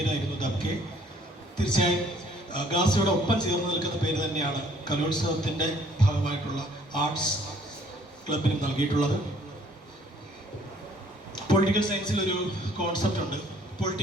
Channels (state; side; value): normal; both; correlation 0.60